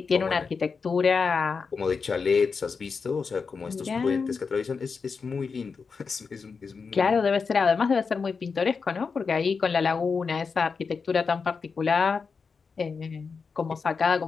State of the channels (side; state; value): right; quieter; 5.2 dB